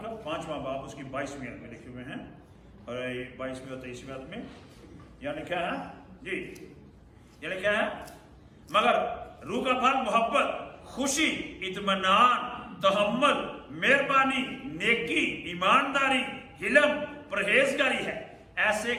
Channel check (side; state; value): both; identical; correlation 1.00